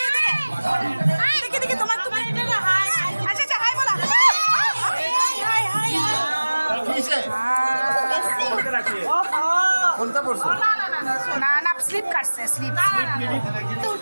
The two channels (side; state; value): both; inverted; correlation -1.00